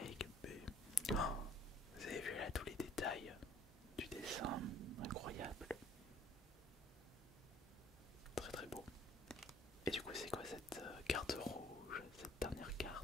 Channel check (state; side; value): normal; both; correlation 0.55